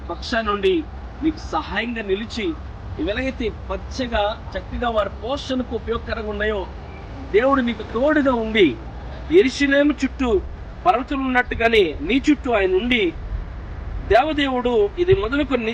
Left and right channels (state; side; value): identical; both; correlation 1.00